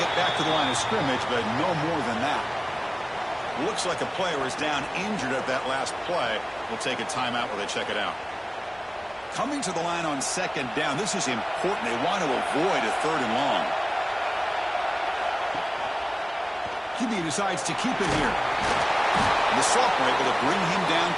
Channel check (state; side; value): identical; both; correlation 1.00